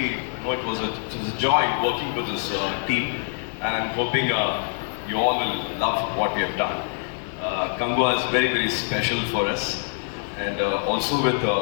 know it was a joy working with this team, and I'm hoping you all will love what we have done. Kangwa is very special for us, and also with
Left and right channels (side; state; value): right; silent; digital silence